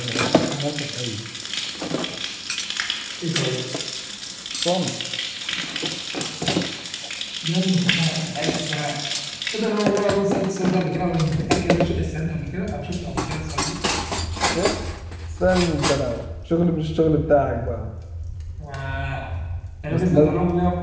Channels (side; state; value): both; identical; correlation 1.00